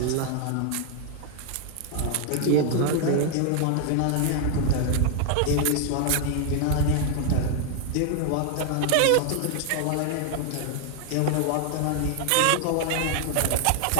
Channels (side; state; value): both; different; correlation 0.00